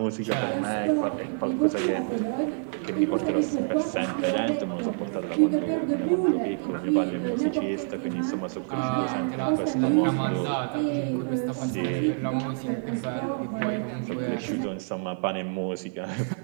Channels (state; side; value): silent; left; digital silence